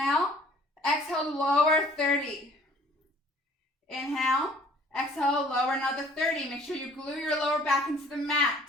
Exhale, lower 30. Inhale. Exhale, lower another 30. Make sure you glue your lower back into the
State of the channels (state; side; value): normal; both; correlation 0.56